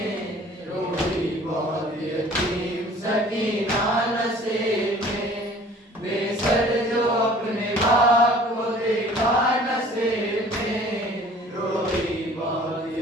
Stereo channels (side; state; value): both; normal; correlation 0.50